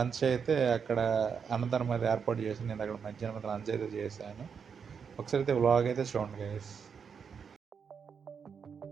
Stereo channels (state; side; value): quieter; left; 6.5 dB